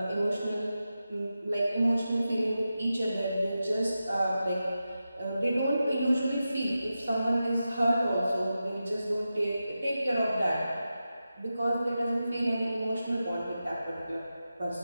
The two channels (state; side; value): inverted; both; correlation -0.92